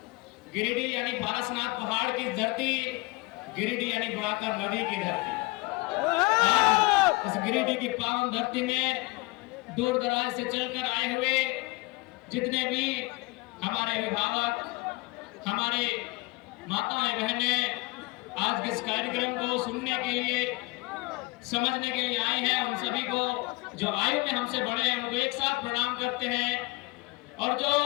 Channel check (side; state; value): right; quieter; 23.9 dB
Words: गिरिडीह यानी पारसनाथ पहाड़ की धरती, गिरिडीह यानी बड़ाकर नदी की धरती। इस गिरिडीह की पावन धरती में दूर दराज से चलकर आए हुए जितने भी हमारे अभिभावक, हमारे माताएं बहनें आज के इस कार्यक्रम को सुनने के लिए, समझने के लिए आए हैं, उन सभी को जो आयु में हमसे बड़े हैं उनको एक साथ प्रणाम करते हैं और जो